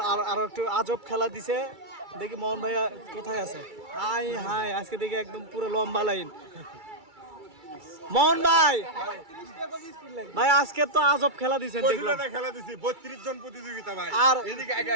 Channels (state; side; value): late; left; 2.3 ms